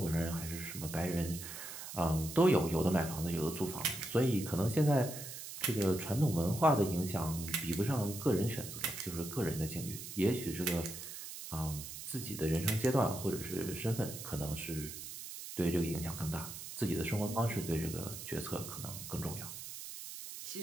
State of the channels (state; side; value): noise; right; hiss, 10 dB below the sound